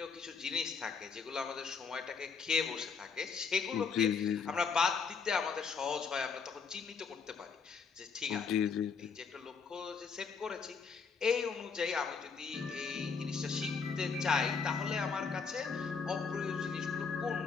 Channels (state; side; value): quieter; right; 5.6 dB